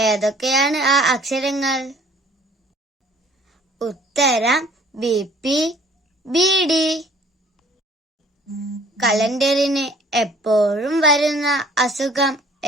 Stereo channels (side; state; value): both; normal; correlation 0.55